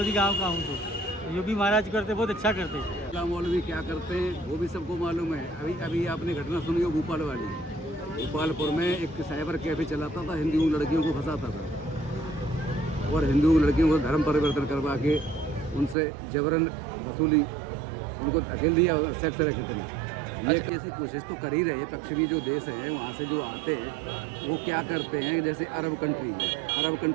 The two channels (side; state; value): left; drops out; at 16.0 s